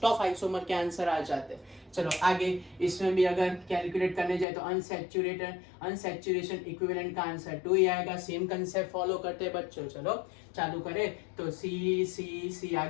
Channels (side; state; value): right; drops out; at 4.5 s